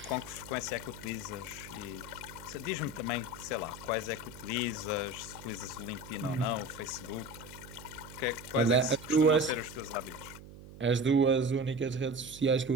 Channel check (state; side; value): noise; right; hum, 16 dB below the sound